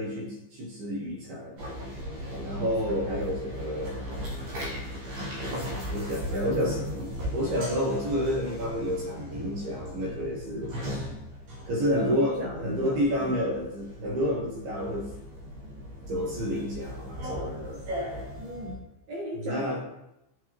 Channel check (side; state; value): left; late; 15 ms